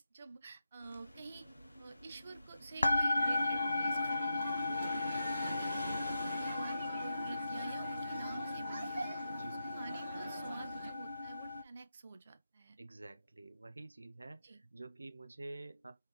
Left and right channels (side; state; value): both; inverted; correlation -0.85